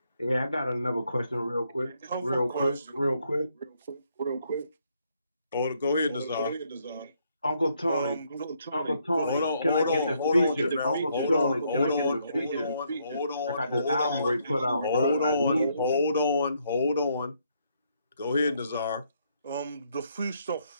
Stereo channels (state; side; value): inverted; both; correlation -0.72